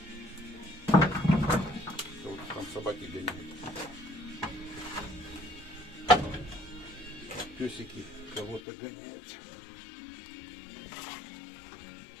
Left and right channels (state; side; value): drops out; right; at 8.6 s